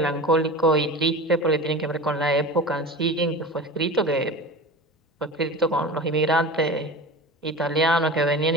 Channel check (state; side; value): normal; both; correlation 0.32